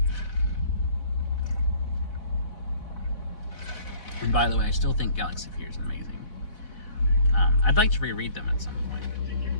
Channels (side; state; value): right; late; 4.1 ms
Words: And by the way, I still think Galaxy of Fear is amazing. I'd like to reread them at some point.